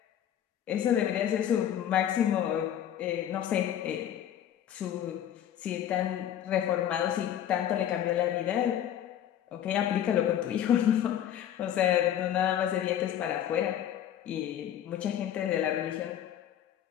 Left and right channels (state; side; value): quieter; right; 10.6 dB